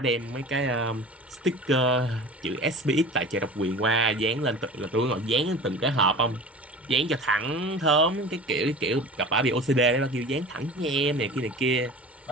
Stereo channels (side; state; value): both; normal; correlation 0.37